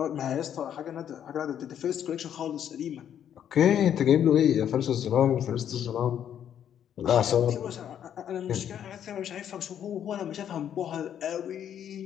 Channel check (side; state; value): right; quieter; 9.6 dB